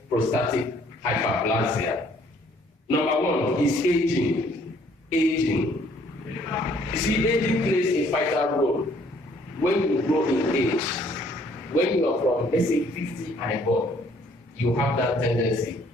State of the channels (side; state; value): both; normal; correlation 0.62